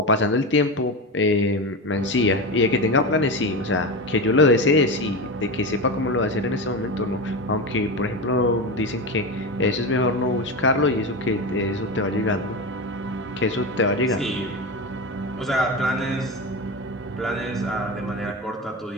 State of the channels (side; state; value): both; normal; correlation 0.20